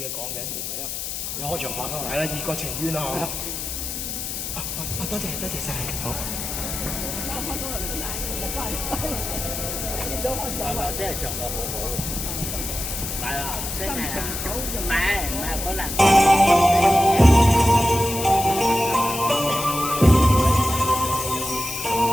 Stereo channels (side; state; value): left; noise; hiss, 5 dB below the sound